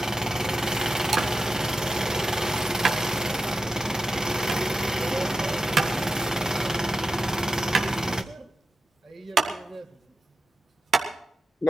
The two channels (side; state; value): both; normal; correlation 0.91